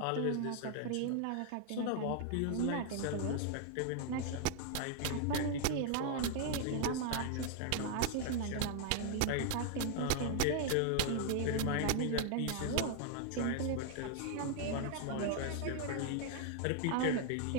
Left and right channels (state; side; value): different; both; correlation 0.00